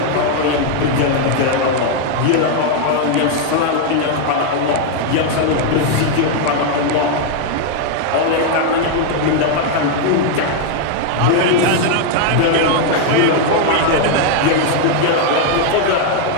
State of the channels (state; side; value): different; both; correlation 0.01